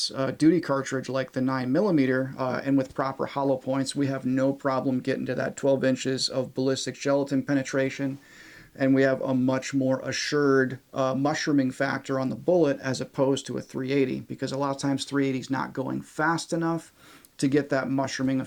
duty cartridge like the 9mm, and with proper hollow points, we have no problem getting to that 12 inches of ballistic gelatin penetration, and we have a much more assured mushrooming factor on the bullet as opposed to a 380, because a lot of times 380 is not going fast enough to get that mushrooming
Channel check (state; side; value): identical; both; correlation 1.00